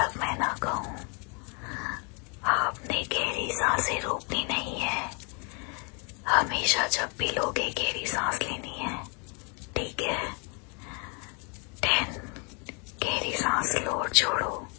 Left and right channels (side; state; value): right; quieter; 35.0 dB